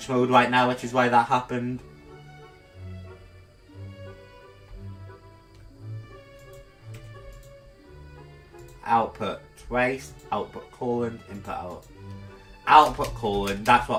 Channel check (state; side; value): identical; both; correlation 1.00